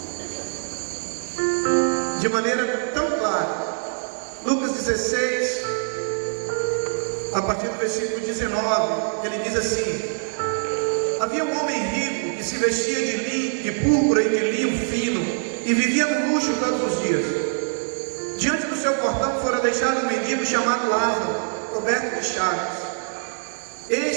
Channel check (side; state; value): left; silent; digital silence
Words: De maneira tão clara. Lucas 16, a partir do versículo 19, ele diz assim: havia um homem rico que se vestia de púrpura e de linho fino e vivia no luxo todos os dias. Diante do seu portão fora deixado um mendigo chamado Lázaro, coberto de chagas.